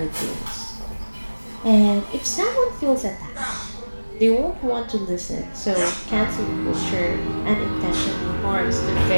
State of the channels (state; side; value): inverted; both; correlation -1.00